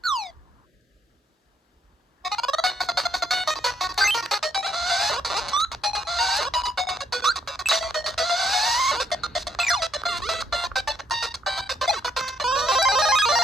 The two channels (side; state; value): both; normal; correlation 0.71